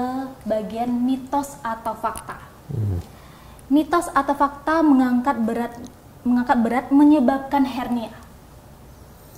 bagian mitos atau fakta. Mitos atau fakta mengangkat berat menyebabkan hernia?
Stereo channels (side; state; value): both; identical; correlation 1.00